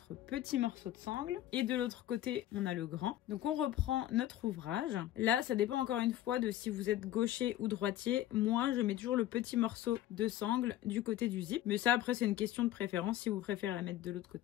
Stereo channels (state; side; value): quieter; right; 13.3 dB